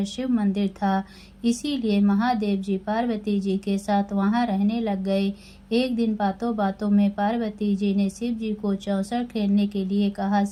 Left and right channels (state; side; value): identical; both; correlation 1.00